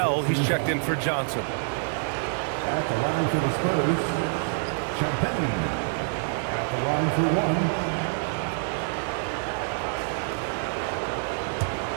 he's checked in for Johnson. At the line for the Spurs, Champagnie. At the line for 1.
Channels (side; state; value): left; silent; digital silence